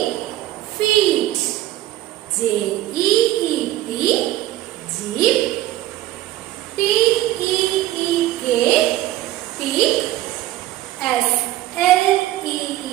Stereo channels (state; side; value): quieter; left; 14.8 dB